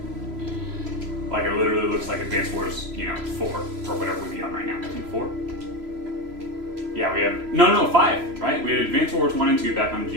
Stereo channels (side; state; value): left; late; 3.0 ms